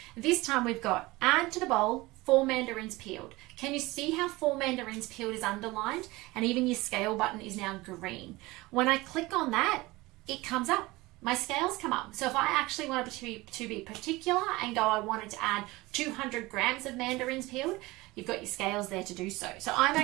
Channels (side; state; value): left; quieter; 21.0 dB